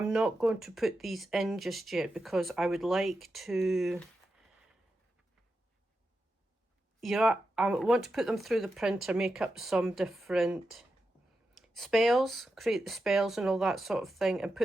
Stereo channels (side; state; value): both; normal; correlation 0.88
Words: not going to put these in just yet, because I would like to, you know, I want to put them through the printer, make up some different spells, create the spells and all that sort of thing, and